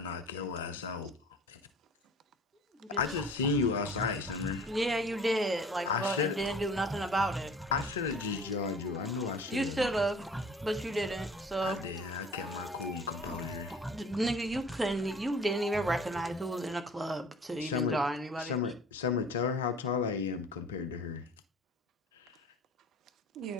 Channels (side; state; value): both; normal; correlation 0.47